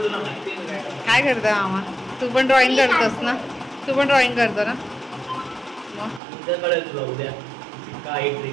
तुला माहिती आहे काय? काय करतो मामा? तू पण ड्रॉइंग करतोस ना? तू पण ड्रॉइंग करतो ना? मग उद्या कळेल तुला उद्या काय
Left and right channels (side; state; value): left; drops out; at 6.2 s